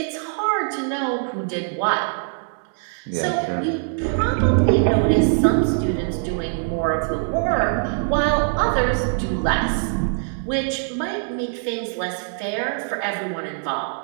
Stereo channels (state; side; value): silent; left; 64 dB below the other